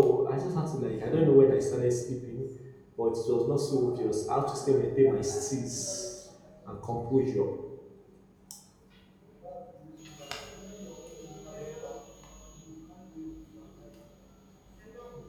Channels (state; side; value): identical; both; correlation 1.00